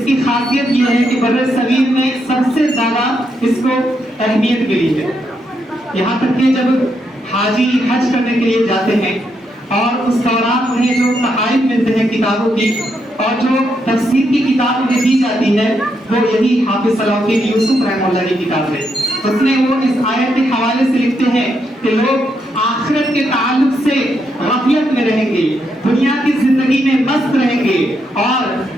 खासियत ये है कि बर्र सगीर में सबसे ज्यादा इसको अहमियत मिली है। यहाँ तक कि जब हाजी हज करने के लिए जाते हैं और उस दौरान उन्हें जो तहाइफ मिलते हैं किताबों की और जो तफसीर की किताब उन्हें दी जाती है वो यही हाफिज सलाहुद्दीन यूसुफ रहमतुल्लाह की किताब है। उसमें वो इस आयत के हवाले से लिखते हैं कि लोग आखिरत के ताल्लुक से गफलत में रहेंगे, दुनिया की जिंदगी में मस्त रहेंगे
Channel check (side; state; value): both; normal; correlation 0.79